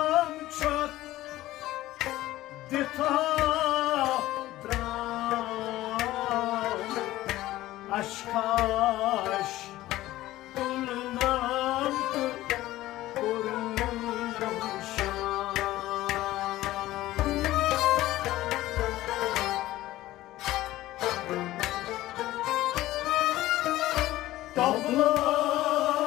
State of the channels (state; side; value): quieter; right; 16.0 dB